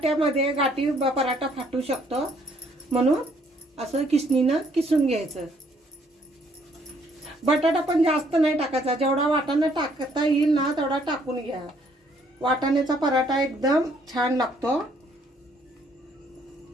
गाठी पराठा फाटू शकतो, म्हणून असं किसणीनं किसून घ्यायचं। बटाटा पण जास्त नाही टाकायचा, जेवढा वाटाणा टाकता येईल ना तेवढा टाकून घ्या। वाटाण्याचा पराठा एकदम छान लागतो।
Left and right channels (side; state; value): both; normal; correlation 0.66